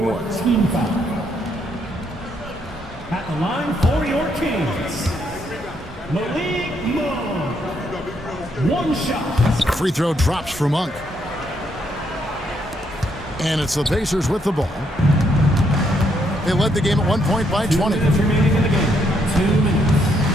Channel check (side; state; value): both; normal; correlation 0.74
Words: ones. At the line for your Kings, Malik Monk. One shot. Free throw drops for Monk. And it's the Pacers with the ball. They led the game at 1 point by 20. 2 minutes remaining in the game. 2 minutes.